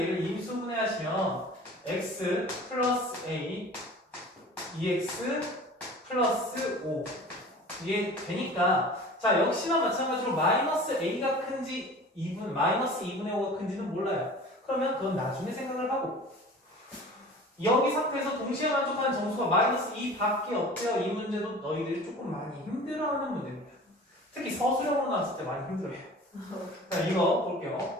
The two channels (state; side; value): normal; both; correlation 0.41